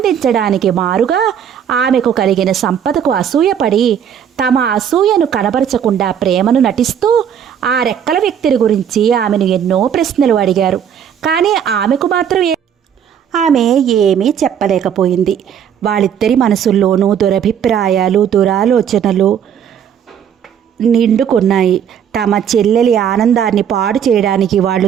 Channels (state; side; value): quieter; left; 8.6 dB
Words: మారుగా ఆమెకు కలిగిన సంపదకు అసూయపడి తమ అసూయను కనబరచకుండా ప్రేమను నటిస్తూ ఆ రెక్కల వ్యక్తిని గురించి ఆమెను ఎన్నో ప్రశ్నలు అడిగారు. కానీ ఆమెకు మాత్రం ఆమె ఏమీ చెప్పలేకపోయింది. వాళ్ళిద్దరి మనసుల్లోనూ దురభిప్రాయాలు, దురాలోచనలు నిండుకున్నాయి. తమ చెల్లెలి ఆనందాన్ని పాడు చేయడానికి వాళ్ళు